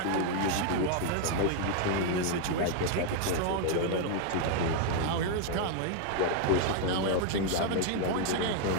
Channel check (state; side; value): different; both; correlation 0.00